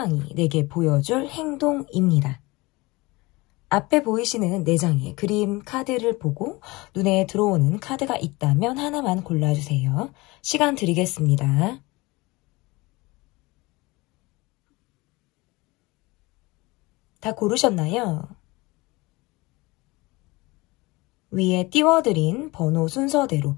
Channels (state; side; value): quieter; right; 22.9 dB